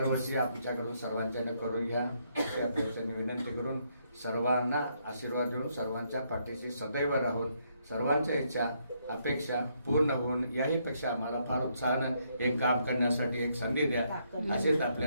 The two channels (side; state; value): both; inverted; correlation -0.74